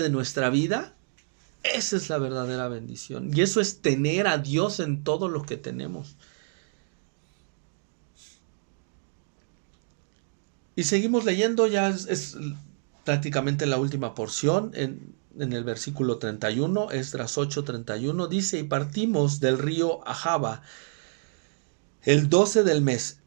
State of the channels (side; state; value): left; silent; digital silence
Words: de nuestra vida. Esa es la verdadera bendición. Y eso es tener a Dios en todo lo que tenemos. Y seguimos leyendo, ya es prácticamente la última porción, en el versículo 31, Esdras 8:31, dice: y partimos del río Ahava el 12 del mes,